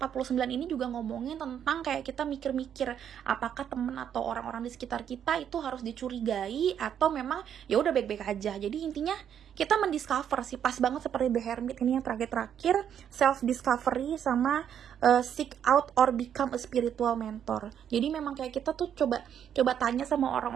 ini juga ngomongin tentang kayak kita mikir-mikir apakah temen atau orang-orang di sekitar kita itu harus dicurigai atau memang ya udah baik-baik aja. Jadi intinya kita mendiscover sih, pas banget seperti The Hermit ini yang terakhir, self discovery sama seek out or become a spiritual mentor. Jadi memang kayak kita tuh coba tanya sama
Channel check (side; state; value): left; quieter; 9.0 dB